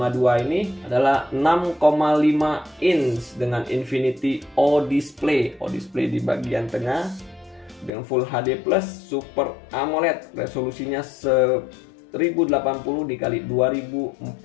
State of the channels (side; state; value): right; drops out; at 7.9 s